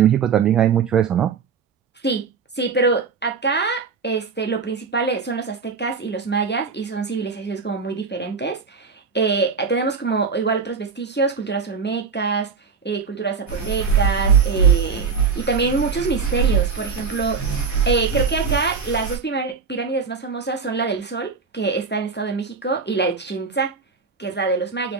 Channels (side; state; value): left; quieter; 5.4 dB